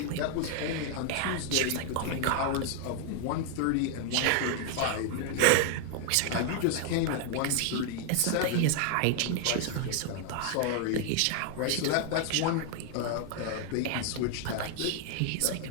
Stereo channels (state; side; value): different; both; correlation 0.00